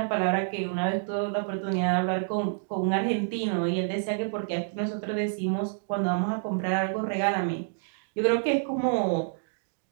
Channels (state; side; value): silent; left; digital silence